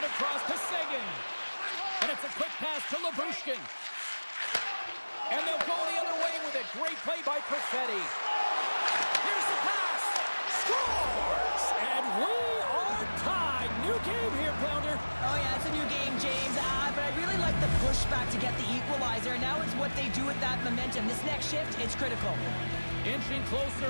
across to Seguin. And it's a quick pass to Labushkin. And they'll go the other way with it. Great play by Perfetti. Here's the pass. Scores! And we are tied. New game here, Pounder. Oh, yeah, it's a new game, James. But I really like the pushback to get the equalizer. Now it's what they do with that momentum. This next shift, it's critical. Inching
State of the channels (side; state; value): both; inverted; correlation -1.00